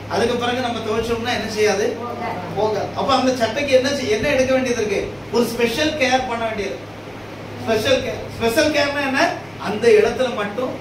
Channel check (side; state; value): left; noise; rumble, 29 dB below the sound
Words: அதுக்கு பிறகு நம்ம துவைச்சோம்னா என்ன செய்யாது? போகாது. அப்ப அந்த சட்டைக்கு என்ன எடுக்க வேண்டியது இருக்கு? ஒரு ஸ்பெஷல் கேர் பண்ண வேண்டியது. ஸ்பெஷல் கேர்னா என்ன? அந்த இடத்துல மட்டும்